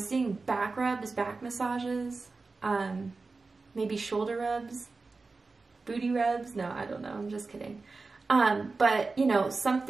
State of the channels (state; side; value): quieter; left; 3.9 dB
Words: back rubs, back massages, maybe shoulder rubs, booty rubs. No, I don't know. I'm just kidding. But, you know,